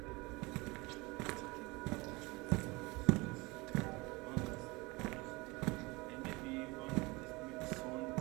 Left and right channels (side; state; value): left; quieter; 24.6 dB